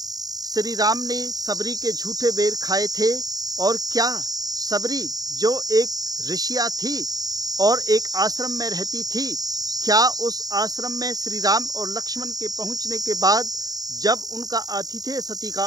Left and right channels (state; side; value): late; left; 0.18 ms